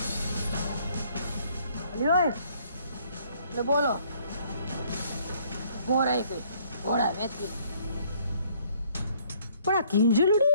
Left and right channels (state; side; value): inverted; both; correlation -0.63